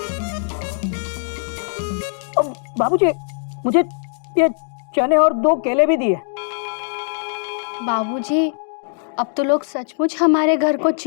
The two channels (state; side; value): silent; right; 65 dB below the other